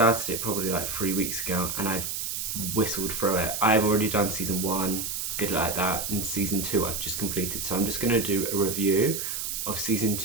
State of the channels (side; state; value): right; noise; hiss, 3 dB below the sound